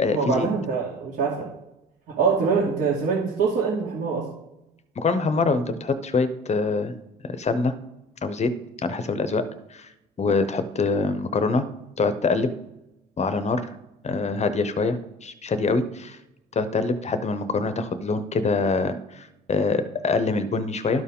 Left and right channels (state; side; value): normal; both; correlation 0.46